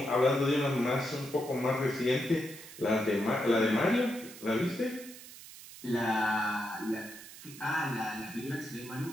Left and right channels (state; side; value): noise; right; hiss, 16 dB below the sound